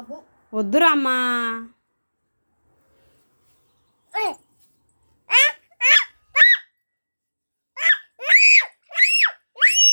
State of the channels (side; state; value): both; inverted; correlation -1.00